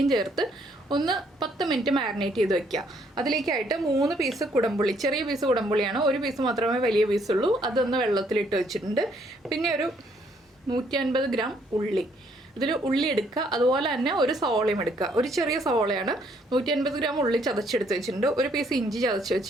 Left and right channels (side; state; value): both; normal; correlation 0.67